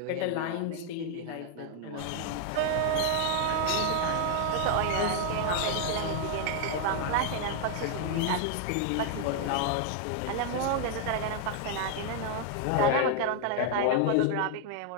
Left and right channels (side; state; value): both; different; correlation 0.00